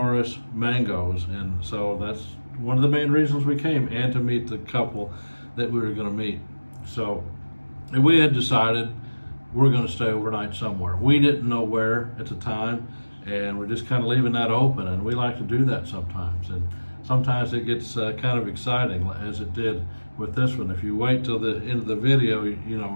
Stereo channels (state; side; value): inverted; both; correlation -1.00